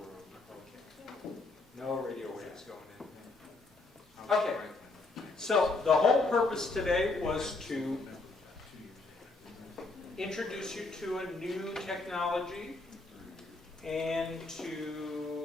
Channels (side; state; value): right; quieter; 3.4 dB